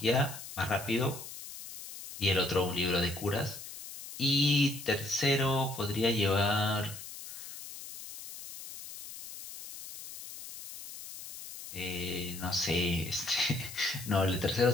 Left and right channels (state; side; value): noise; left; hiss, 12 dB below the sound